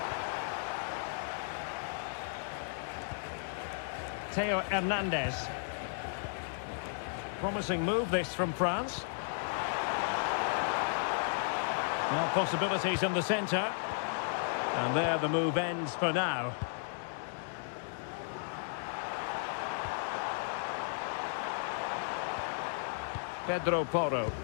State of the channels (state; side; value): silent; right; digital silence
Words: Theo Hernandez. Promising move this from France. Now possibilities in the centre. And there the move ends for now. Pedro Porro.